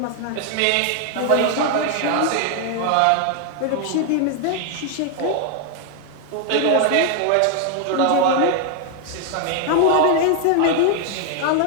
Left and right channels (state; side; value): different; both; correlation 0.00